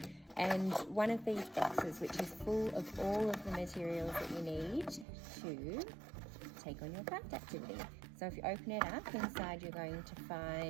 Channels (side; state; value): left; drops out; at 5.1 s